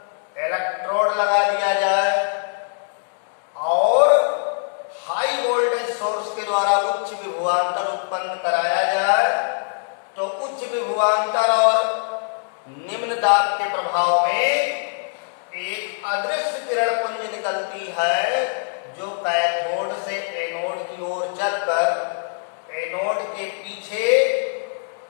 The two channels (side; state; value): right; silent; digital silence